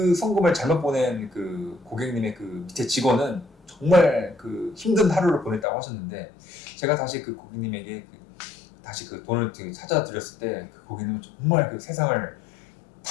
송금을 잘못 보낸 그 고객님의 그 밑에 직원은 정말 그 힘든 하루를 보냈다고 하셨는데 제가 다시 그 고객님에게 다시 그 돈을 찾아드렸을 때 그 고객님은 정말 그 세상을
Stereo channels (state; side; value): drops out; right; at 5.7 s